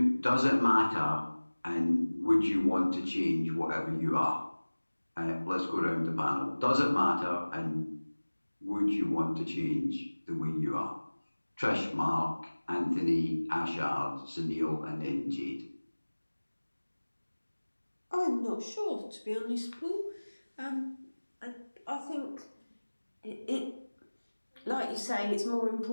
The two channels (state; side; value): inverted; both; correlation -1.00